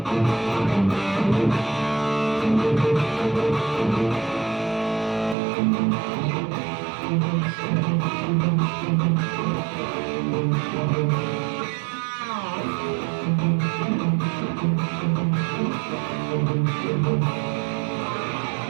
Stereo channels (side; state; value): left; drops out; at 5.4 s